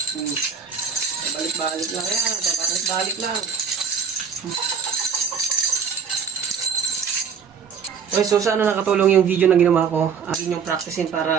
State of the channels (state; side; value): quieter; left; 6.6 dB